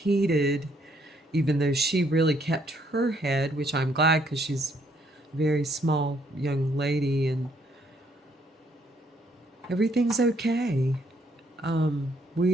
even though she really kept her head, which I'm glad, because she's a very small young lady, and everything's okay.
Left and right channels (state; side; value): normal; both; correlation 0.69